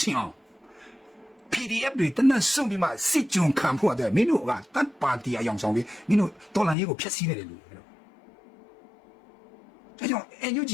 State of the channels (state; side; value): drops out; right; at 6.8 s